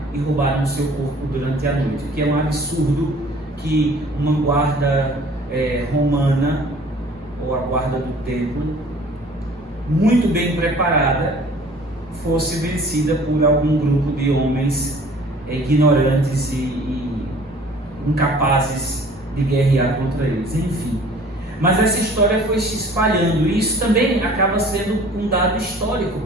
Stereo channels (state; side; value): normal; both; correlation 0.50